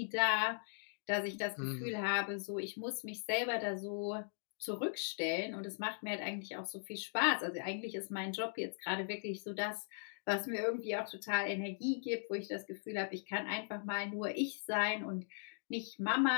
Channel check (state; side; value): silent; right; digital silence